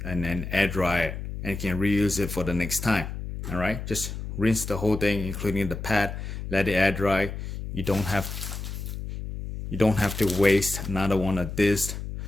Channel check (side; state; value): left; noise; hum, 7 dB below the sound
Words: and then air dry it, and you can reuse it for the next time. All right, just rinse the whole thing, including the pad, let it air dry. You don't have to waste another one of this